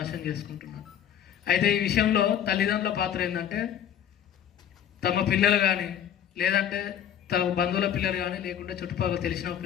చేసుకుంటున్నారు. అయితే ఈ విషయంలో తల్లిదండ్రుల పాత్ర ఏంటంటే తమ పిల్లలు కానీ లేదంటే తమ బంధువుల పిల్లలు కానీ లేకుంటే చుట్టుపక్కల తెలిసిన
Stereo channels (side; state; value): right; quieter; 9.6 dB